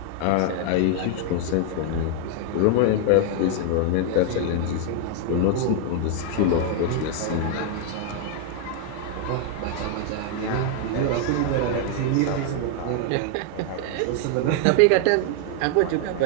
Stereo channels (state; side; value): different; both; correlation 0.00